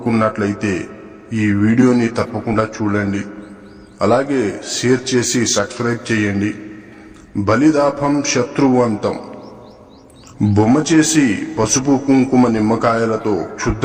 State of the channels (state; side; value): identical; both; correlation 1.00